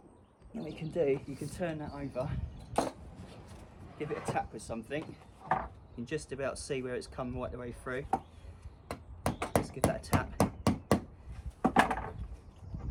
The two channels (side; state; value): both; identical; correlation 1.00